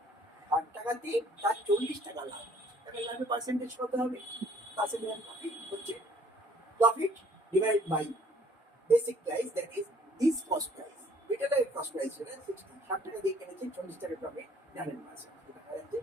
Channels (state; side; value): normal; both; correlation 0.58